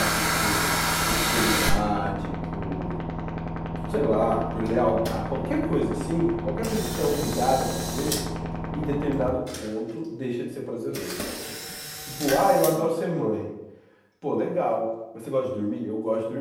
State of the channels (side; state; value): both; identical; correlation 1.00